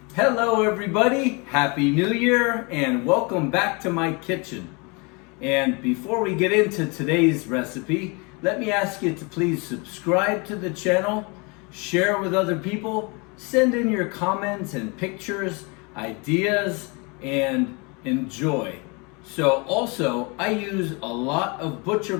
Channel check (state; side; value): quieter; right; 30.0 dB